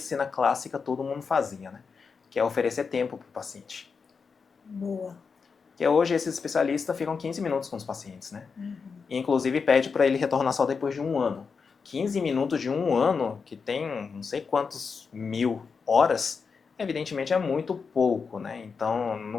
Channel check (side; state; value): right; quieter; 5.4 dB